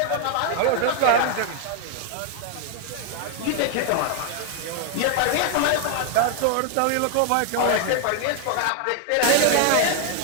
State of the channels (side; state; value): both; different; correlation 0.00